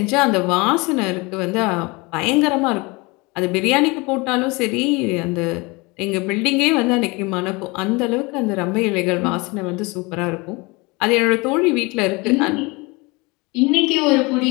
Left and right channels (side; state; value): right; quieter; 25.9 dB